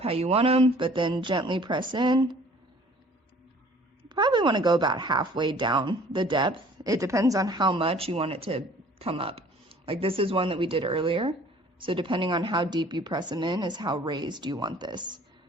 how you want them, but then gently press in. Probably want to go about halfway down the depth. It depends on how much you want it to come up. Like this is one that we did earlier. So depending on how deep you press them in is how raised you want this.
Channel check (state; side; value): normal; both; correlation 0.52